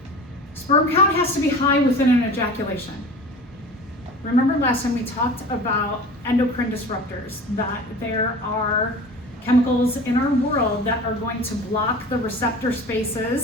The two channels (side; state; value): both; normal; correlation 0.38